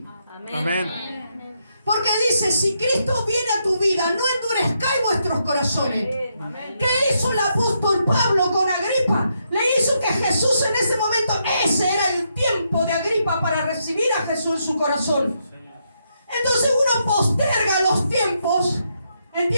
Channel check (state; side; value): inverted; both; correlation -0.79